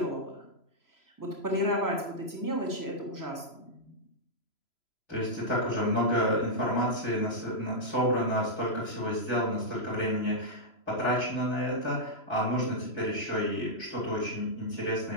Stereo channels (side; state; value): right; late; 3.0 ms